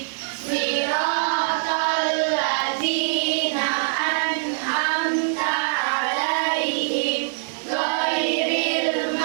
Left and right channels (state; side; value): silent; left; digital silence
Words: Siratal ladzina an'amta 'alaihim ghairil